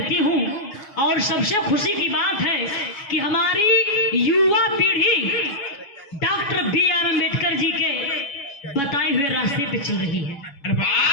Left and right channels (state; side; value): late; right; 7.2 ms